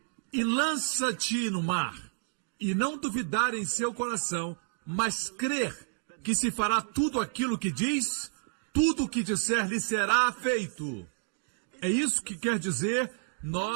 e lança-te no mar. e não duvidar em seu coração, mas crer que se fará tudo aquilo que diz, tudo o que disser lhe será feito. É isso que quer dizer,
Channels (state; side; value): silent; left; digital silence